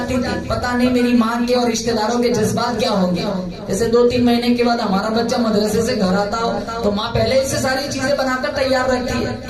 تھی. پتہ نہیں میری ماں کے اور رشتہ داروں کے جذبات کیا ہوں گے. جیسے 2-3 مہینے کے بعد ہمارا بچہ مدرسے سے گھر آتا ہو تو ماں پہلے اس سے ساری چیزیں بنا کر تیار رکھتی ہے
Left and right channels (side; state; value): both; identical; correlation 1.00